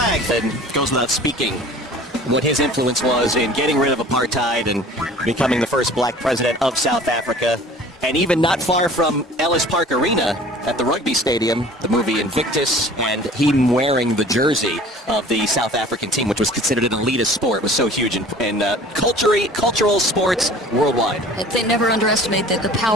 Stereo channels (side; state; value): both; normal; correlation 0.46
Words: that goes without speaking what his influence was in getting rid of apartheid and becoming the first black president of South Africa. And even not far from Ellis Park Arena at the rugby stadium, the movie Invictus, and him wearing the jersey of the South African team, which was considered an elitist sport, was so huge in cultural sports worldwide. They never underestimate the